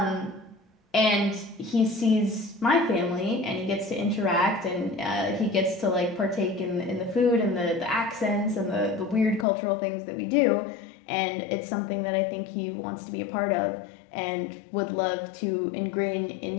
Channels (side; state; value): right; drops out; at 9.5 s